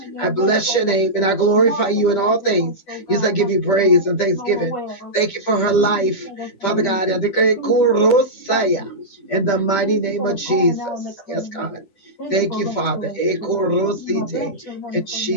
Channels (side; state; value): right; late; 10 ms